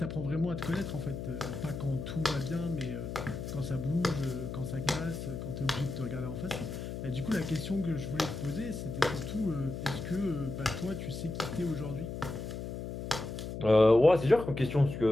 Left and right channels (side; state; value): left; noise; hum, 6 dB below the sound